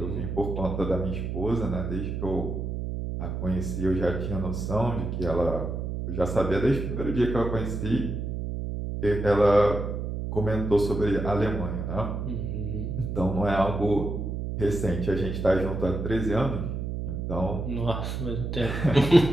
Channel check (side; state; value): right; noise; hum, 4 dB below the sound